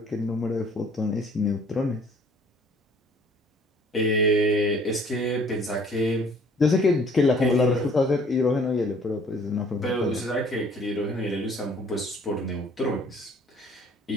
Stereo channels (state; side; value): normal; both; correlation 0.56